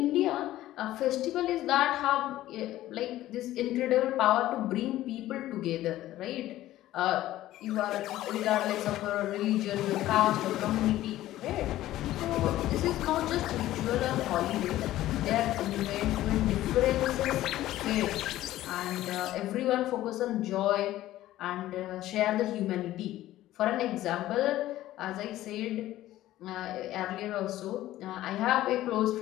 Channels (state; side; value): quieter; right; 14.7 dB